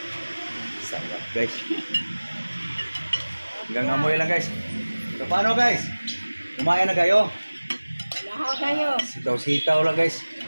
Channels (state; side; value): inverted; both; correlation -1.00